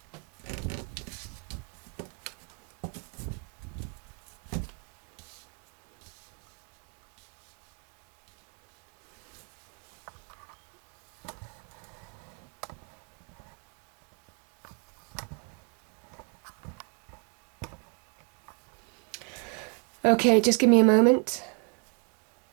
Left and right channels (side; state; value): left; quieter; 36.8 dB